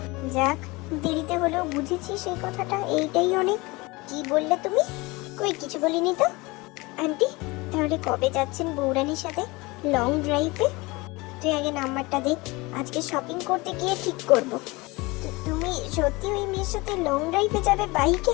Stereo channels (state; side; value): quieter; right; 23.7 dB